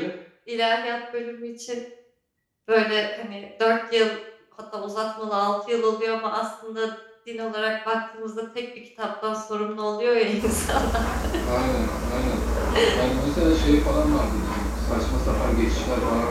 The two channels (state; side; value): identical; both; correlation 1.00